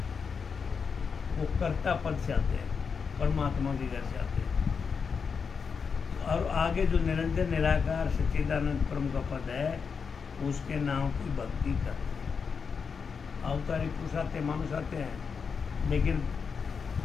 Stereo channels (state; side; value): quieter; right; 5.8 dB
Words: वो कर्ता पद से आते हैं, परमात्मा के घर से आते हैं। तो और आगे जो निरंजन निराकार सच्चिदानंद परम का पद है उसके नाम की भक्ति करते हैं। अवतारी पुरुष आते हैं, मानुष आते हैं, लेकिन